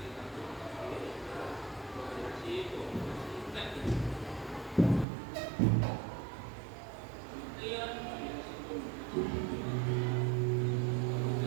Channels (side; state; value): left; drops out; at 5.1 s